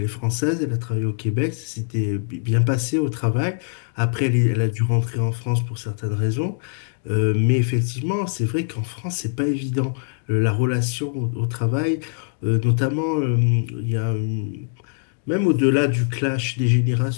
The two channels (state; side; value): silent; right; digital silence